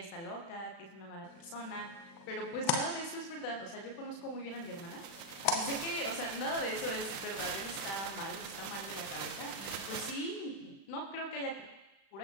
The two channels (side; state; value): right; late; 36 ms